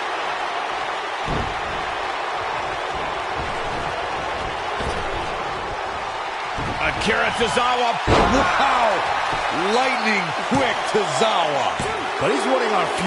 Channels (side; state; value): both; identical; correlation 1.00